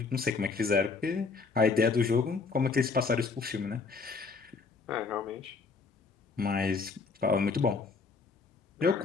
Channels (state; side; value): quieter; right; 4.6 dB